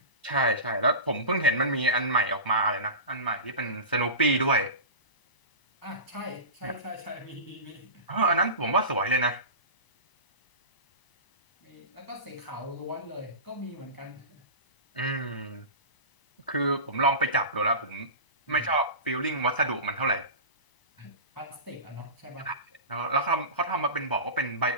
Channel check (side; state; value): right; late; 1.0 ms